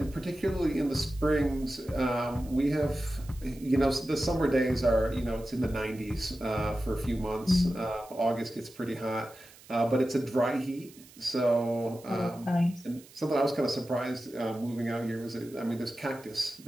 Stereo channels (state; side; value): noise; right; hiss, 23 dB below the sound